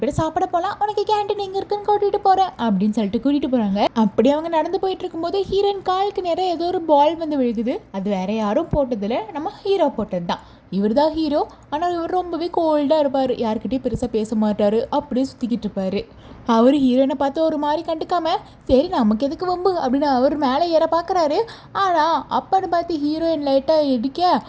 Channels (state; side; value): identical; both; correlation 1.00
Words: பேரும் சாப்பிட போகலாம், உனக்கு கேன்டீன் எங்கே இருக்குன்னு கூட்டிகிட்டு போகிறேன் அப்படின்னு சொல்லிட்டு கூட்டிகிட்டு போகிறாங்க. அப்படி அவங்க நடந்து போயிட்டு இருக்கும்போது ஹீரோயின் காலுக்கு நேரம் ஏதோ ஒரு பால் வந்து விழுகுது. அது வேற யாரும் போட்டதில் நம்ம ஹீரோ போட்டது தான். இவர் தான் ஹீரோ. ஆனால் இவர் ரொம்பவே கோல்டாக இருப்பார், யார்கிட்டையும் பெருசாக பேச மாட்டார், அப்படியே சுற்றிக்கிட்டு இருப்பார். அவர் ஹீரோயினை பார்த்து ஒரு மாதிரி கண்டுக்காம, சரி நமக்கு எதுக்கு வம்பு அப்படின்னு அவர் மேலே ஏற பார்க்குறாரு. ஆனால் அப்பன்னு பார்த்து ஹீரோயின் லைட்டாக இடிக்க